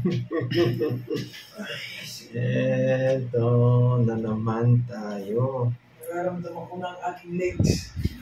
Eto na naman tayo. Nararamdaman ko na ang aking legs.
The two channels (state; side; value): identical; both; correlation 1.00